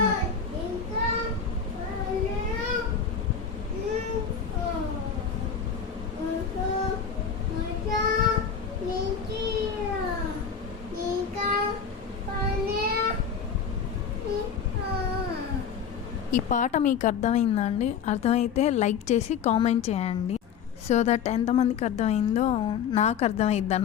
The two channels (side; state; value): right; quieter; 6.9 dB